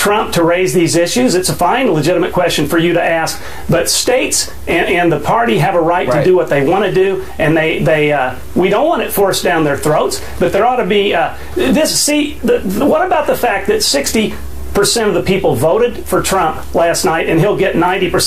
to raise these issues. It's a fine, legitimate question for you to ask. But states and the party have a right to do what they want to do, and we don't want it forced down their throats. But there ought to be what about the fact that 60% of the people voted for Trump last night, and he'll get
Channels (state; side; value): identical; both; correlation 1.00